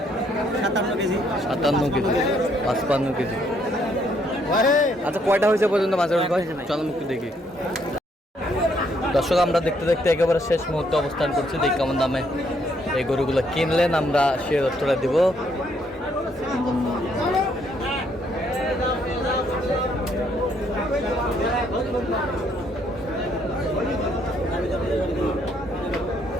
57 কেজি। 57 KG 55 KG. আচ্ছা কয়টা হয়েছে পর্যন্ত মাছের ভাই? চলো একটু দেখি। দর্শক আমরা দেখতে দেখতে একেবারে শেষ মুহূর্তে অবস্থান করছি। দেখি কেমন দামে এই গরুগুলো কিনলেন, আমরা সে তথ্যটা দিব।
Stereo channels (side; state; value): both; normal; correlation 0.70